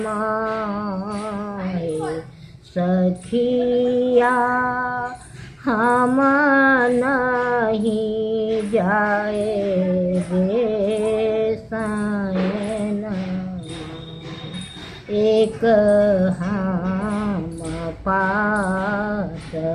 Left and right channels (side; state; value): both; identical; correlation 1.00